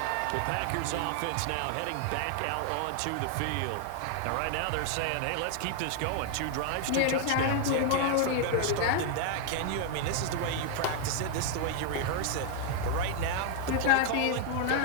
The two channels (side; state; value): both; different; correlation 0.00